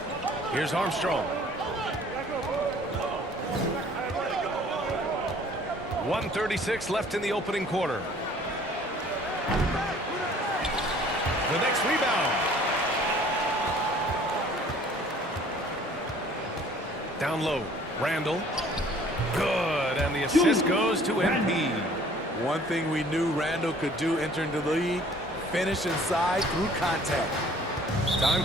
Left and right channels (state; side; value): normal; both; correlation 0.54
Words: Here's Armstrong. 1:36 left in the opening quarter. The next rebound. Down low. Randall. Good. And the assist goes to MP. One thing we knew Randall could do entering the league, finish inside through contact. Time